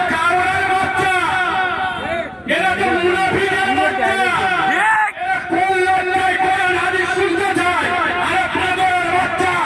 কারোর বাচ্চা, এরা তো মুনাফিকের বাচ্চা। কোন লড়াই কোরআন হাদিস শুনতে চায়? আরে পাগলের বাচ্চা,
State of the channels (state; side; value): identical; both; correlation 1.00